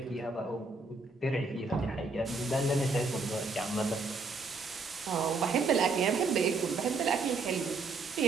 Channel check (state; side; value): quieter; left; 3.8 dB